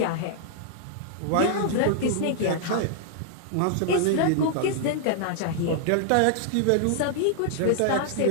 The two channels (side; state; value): both; different; correlation -0.01